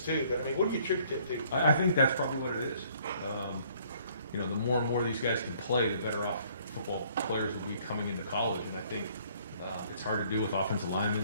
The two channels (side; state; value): both; inverted; correlation -0.61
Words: too, but I mean, what do you attribute that to? I think that's probably what it is. The more and more these guys can play, the better off football players will be coming into college. And I think it's hard to do with offensive